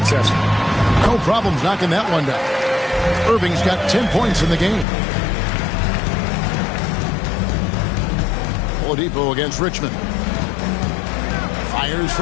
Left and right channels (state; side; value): drops out; right; at 4.9 s